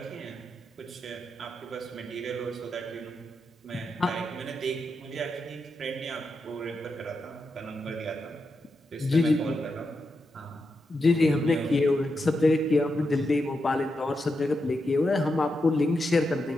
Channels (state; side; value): normal; both; correlation 0.86